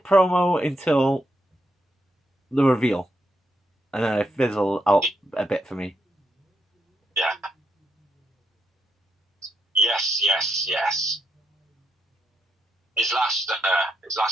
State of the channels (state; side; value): normal; both; correlation 0.81